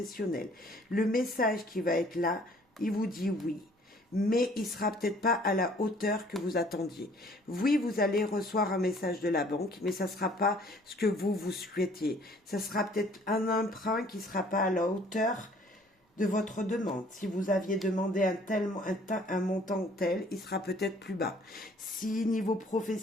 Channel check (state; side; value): normal; both; correlation 0.57